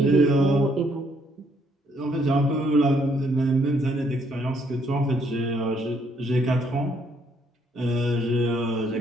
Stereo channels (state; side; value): normal; both; correlation 0.69